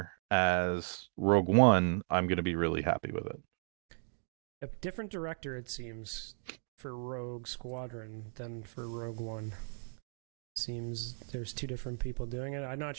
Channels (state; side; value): silent; left; 54 dB below the other